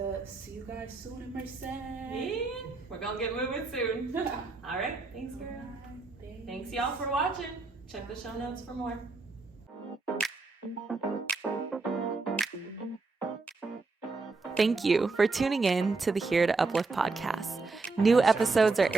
see you guys soon in Merced. Yeah, we're going to get moving soon. All right. Thanks, girl. Thanks, y'all, for watching. Check the show notes for more. Thank you for tuning in to the Here to Uplift podcast. New episodes are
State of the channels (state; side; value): quieter; left; 3.8 dB